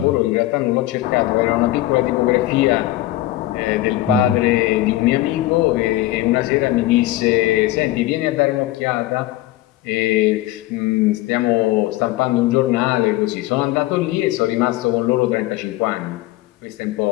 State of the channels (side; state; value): right; quieter; 16.3 dB